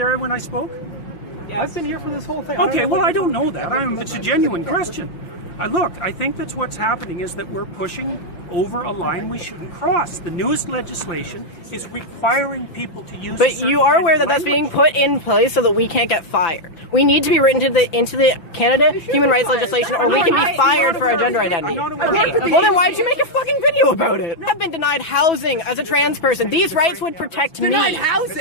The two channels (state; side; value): late; right; 5.8 ms